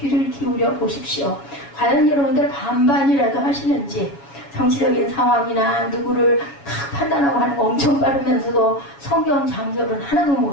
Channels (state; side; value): late; right; 7.2 ms